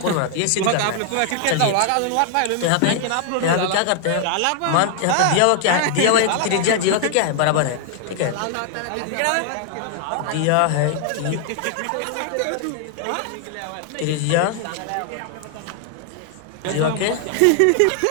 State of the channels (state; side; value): different; both; correlation 0.00